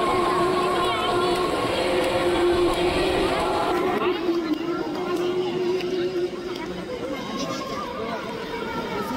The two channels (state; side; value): identical; both; correlation 1.00